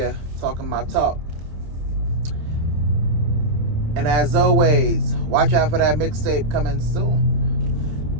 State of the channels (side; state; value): left; late; 26 ms